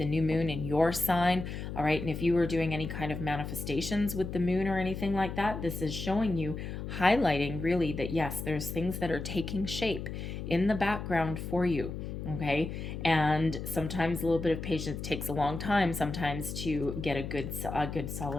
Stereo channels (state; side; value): noise; left; hum, 6 dB below the sound